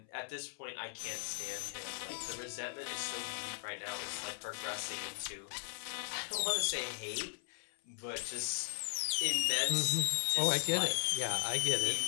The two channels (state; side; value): silent; right; 53 dB below the other